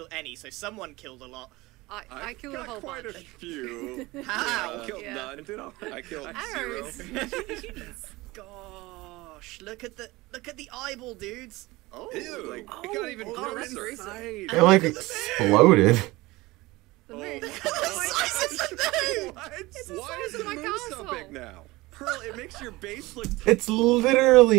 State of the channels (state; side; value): quieter; left; 20.8 dB